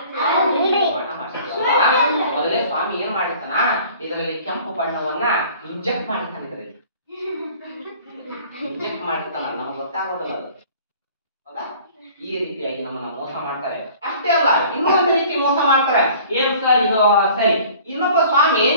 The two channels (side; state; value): both; inverted; correlation -0.49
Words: ಮಠ ಮಾಡಿಸಿದ ಮೊದಲೇ ಸ್ವಾಮಿ ಏನ್ ಮಾಡಿರ್ತಾನ, ಇದರಲ್ಲಿ ಕೆಂಪು ಬಣ್ಣವನ್ನ ಇಂಜೆಕ್ಟ್ ಮಾಡಿರ್ತಾನೆ. ಇದರಲ್ಲಿ ಇಂಜೆಕ್ಟ್ ಮಾಡಿರ್ತಾನ, ನಮಗೆ ಗೊತ್ತಾಗೋದಲ್ಲ ಅದು. ಹೌದಾ? ಈ ರೀತಿಯಾಗಿ ನಮ್ಮನ್ನ ಮೋಸ ಮಾಡ್ತಾರೆ. ಅಷ್ಟೇ ಅಲ್ಲ, ಇನ್ನೊಂದು ರೀತಿ ಮೋಸ ಮಾಡ್ತಾರೆ. ಏನ್ ಸರ್ ಇದು? ಸರಿ, ಇನ್ನೊಬ್ಬ ಸ್ವಾಮಿ